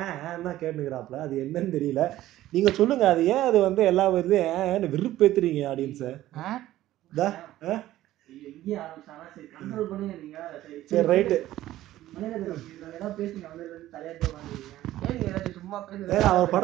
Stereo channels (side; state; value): left; quieter; 14.6 dB